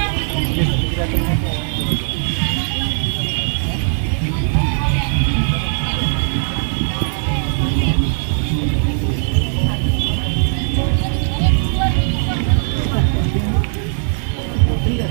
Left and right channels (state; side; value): silent; left; digital silence